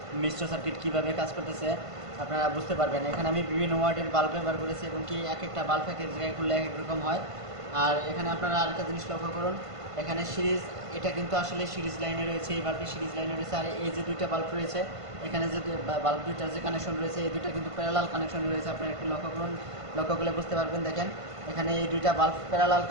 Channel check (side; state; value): left; late; 1.5 ms